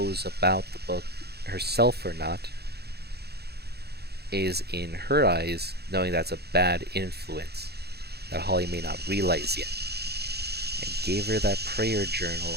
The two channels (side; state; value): left; late; 0.47 ms